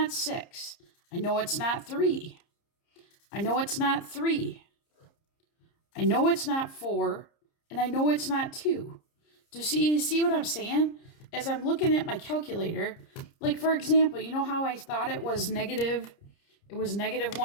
6. I know it's not 3. I know it's not 3. I know it's not 4. And I know it's not 2. Do you see what I'm saying? As I'm looking at my calculator, like for example, you know how I thought it was negative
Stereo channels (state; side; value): late; right; 30 ms